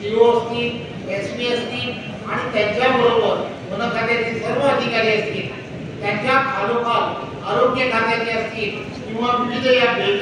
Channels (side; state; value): both; identical; correlation 1.00